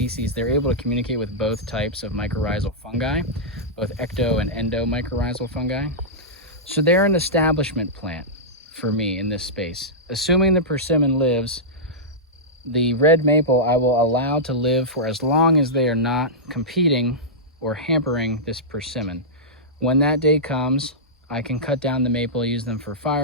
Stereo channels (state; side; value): normal; both; correlation -0.12